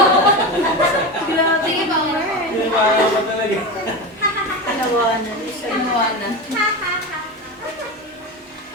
Sige pa, Mar. maawa talaga. Tinawanan. Tinawanan.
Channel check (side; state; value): both; normal; correlation 0.22